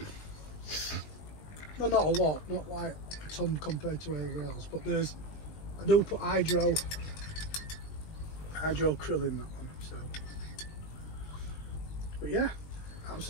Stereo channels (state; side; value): late; right; 20 ms